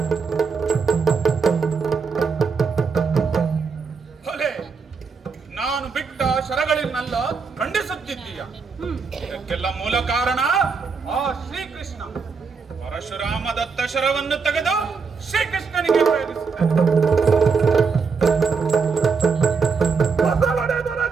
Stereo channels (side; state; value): left; quieter; 5.2 dB